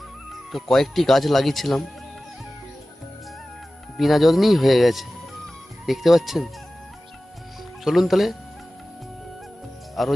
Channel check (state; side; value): normal; both; correlation 0.96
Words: তো কয়েকটি গাছ লাগিয়েছিলাম, বিনা যত্নেই হয়ে গেছে, দেখতে পাচ্ছেন। চলুন তাহলে আরও